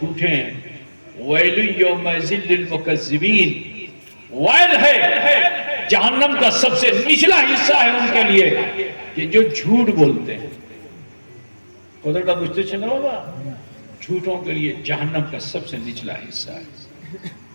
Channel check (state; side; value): inverted; both; correlation -1.00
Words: ہیں. وَيْلٌ يَوْمَئِذٍ لِّلْمُكَذِّبِينَ، وائل ہے، جہنم کا سب سے نچلا حصہ ہے ان کے لیے کہ جو جھوٹ بولتے ہیں. خدا کا پوچھتے چلنا ہوگا، جھوٹوں کے لیے جہنم کا سب سے نچلا حصہ ہے.